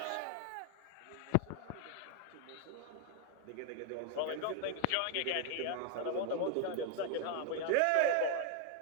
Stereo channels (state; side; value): different; both; correlation 0.00